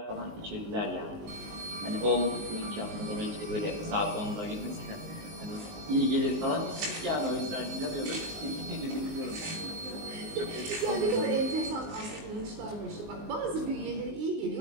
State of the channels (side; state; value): left; late; 19 ms